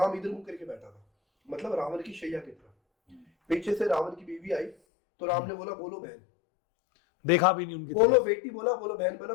इधर मुंह करके बैठा था, मतलब रावण की शैया की तरफ। पीछे से रावण की बीवी आई, तो राम ने बोला बोलो बहन, देखा भी नहीं उनकी बोलो बेटी, बोला बोलो बहन, बोला।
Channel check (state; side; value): drops out; right; at 4.8 s